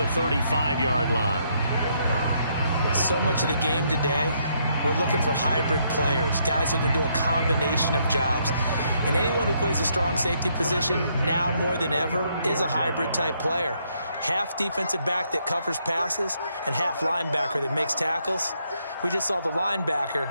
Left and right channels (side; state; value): both; inverted; correlation -0.73